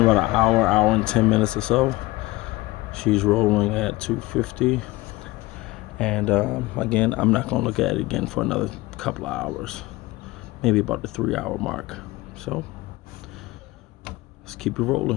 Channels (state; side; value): quieter; right; 20.1 dB